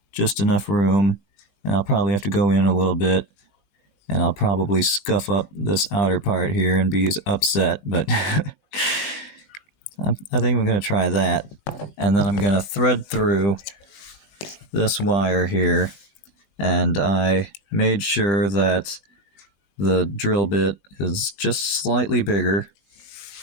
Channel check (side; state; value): right; late; 20 ms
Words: just enough room, and I'll probably have to go in a little bit, and I'll probably scuff up this outer part here and be upset, but I think I'm going to try that. And then I'm going to thread through this wire here, and I made sure that the drill bit is just slightly bigger.